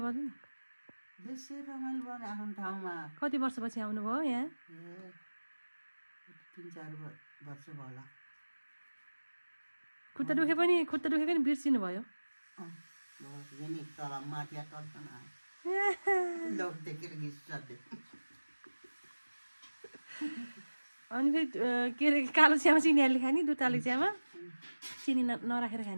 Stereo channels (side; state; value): both; inverted; correlation -1.00